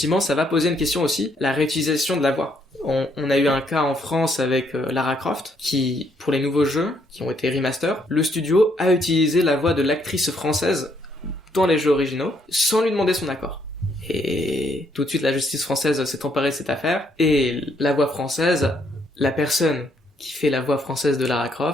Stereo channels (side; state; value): both; normal; correlation 0.71